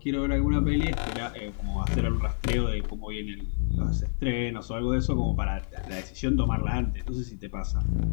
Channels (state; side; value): silent; right; 59 dB below the other